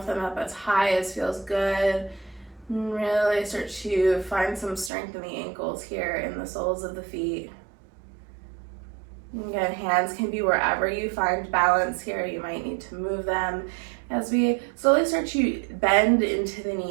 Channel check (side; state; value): left; drops out; at 4.9 s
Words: them up as high as feels good. And really start to find some strength in the ankles here in the soles of the feet. Again, hands can be wherever you find balance here. You might need to move them as we slowly start to bend into the